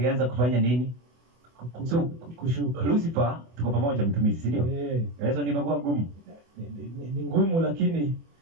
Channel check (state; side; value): late; left; 24 ms